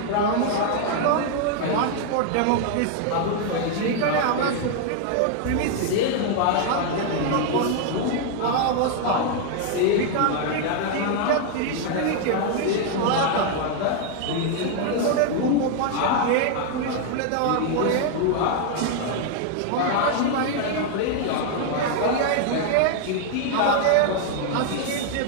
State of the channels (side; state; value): both; different; correlation 0.00